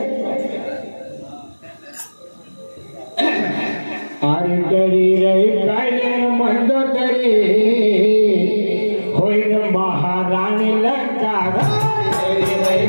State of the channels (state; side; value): inverted; both; correlation -1.00